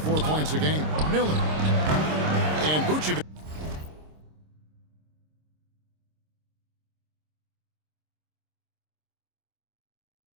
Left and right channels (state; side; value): late; left; 26 ms